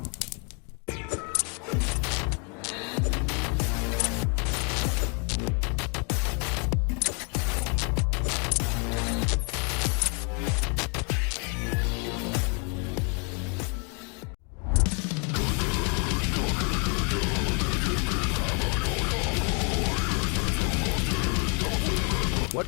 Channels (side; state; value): right; quieter; 36.4 dB